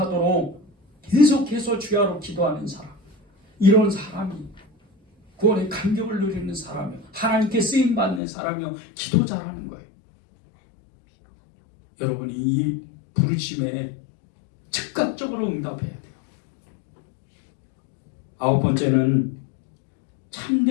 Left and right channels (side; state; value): right; drops out; at 8.2 s